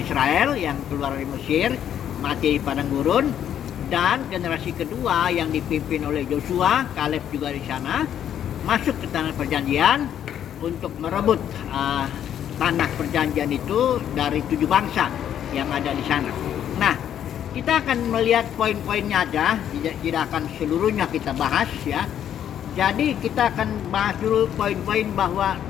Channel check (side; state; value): right; quieter; 10.0 dB